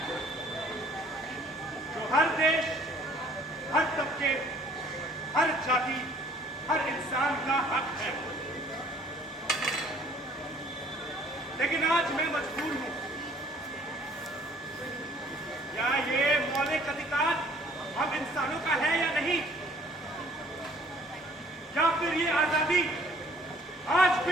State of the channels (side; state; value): both; normal; correlation 0.56